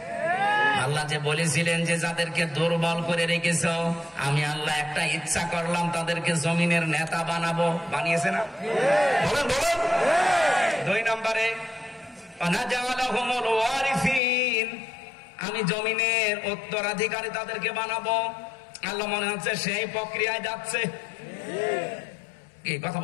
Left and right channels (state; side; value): drops out; right; at 14.2 s